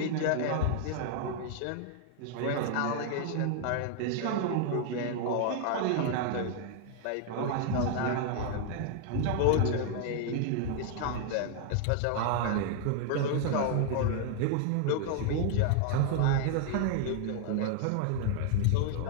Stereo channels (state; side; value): different; both; correlation 0.00